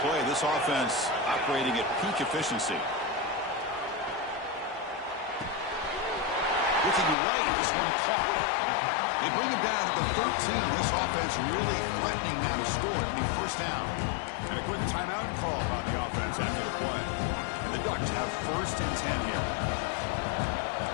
play. This offense operating at peak efficiency. Looking right, this one caught. They bring him down at the 13. This offense really threatening now to score. It'll be first down. And a quick timeout call by the offense after the play. And the Ducks have 1st and 10 here.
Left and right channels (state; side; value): drops out; right; at 7.2 s